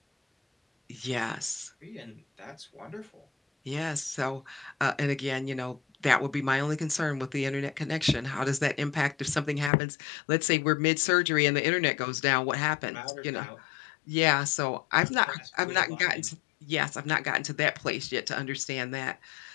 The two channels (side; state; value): right; drops out; at 9.7 s